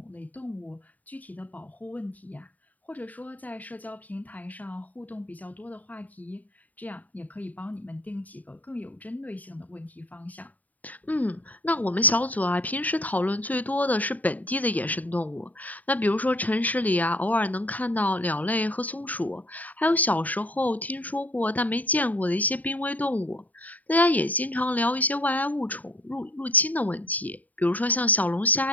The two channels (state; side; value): late; right; 0.076 ms